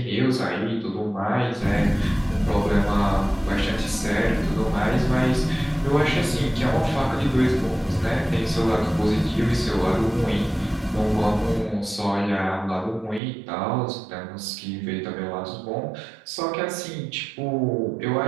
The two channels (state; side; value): drops out; left; at 13.2 s